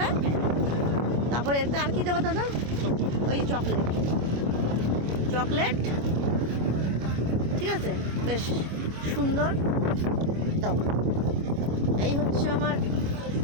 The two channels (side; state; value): left; late; 25 ms